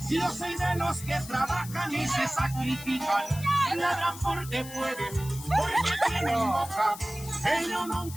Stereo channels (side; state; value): left; noise; hiss, 14 dB below the sound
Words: Yo soy de los que trabajan y se sacrifican. Ladran porque pueden, porque tienen boca. Ellos